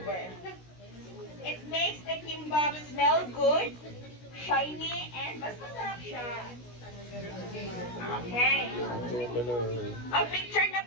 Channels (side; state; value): right; late; 16 ms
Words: It makes the kimbap smell good, shiny, and mas masarap siya. Okay. Picture na